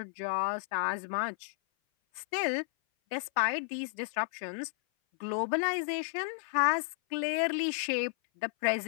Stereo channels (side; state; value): right; silent; 56 dB below the other